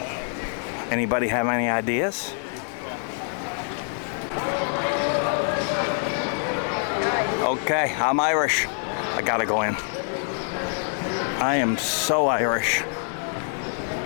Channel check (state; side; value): silent; right; 55 dB below the other